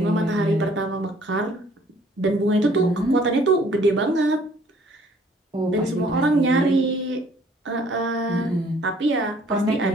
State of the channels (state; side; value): normal; both; correlation 0.59